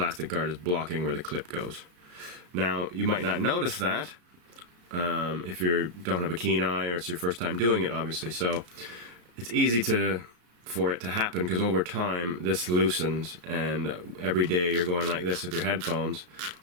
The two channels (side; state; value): left; late; 34 ms